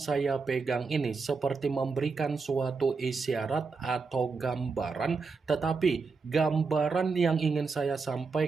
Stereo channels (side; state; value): left; quieter; 4.6 dB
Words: pegang ini seperti memberikan suatu isyarat atau gambaran, tetapi gambaran yang ingin saya